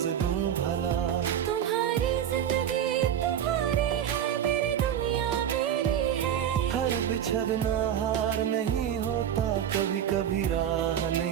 दूं भला। तुम्हारी जिंदगी तुम्हारी है, मेरी दुनिया मेरी है। हर बिछड़ना हार नहीं होता, कभी कभी राह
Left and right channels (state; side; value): quieter; left; 9.6 dB